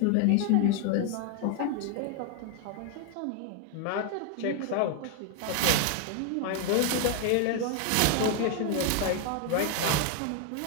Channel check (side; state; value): both; different; correlation 0.01